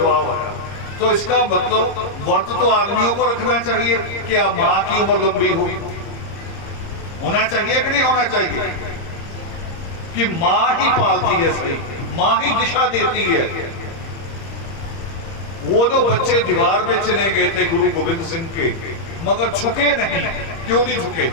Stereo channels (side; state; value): right; late; 30 ms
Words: है। तो इसका मतलब व्रत तो आदमियों को रखना चाहिए कि अब माँ की उम्र लंबी हो, होना चाहिए कि नहीं होना चाहिए? कि माँ ही पालती है सही, माँ ही दिशा देती है। वो जो बच्चे दीवार में चले गए थे गुरु गोविंद सिंह के, मगर झुके नहीं। क्यों नहीं झुके?